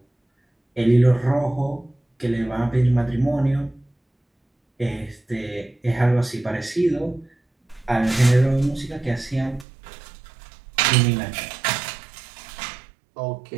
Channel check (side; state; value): left; drops out; at 9.7 s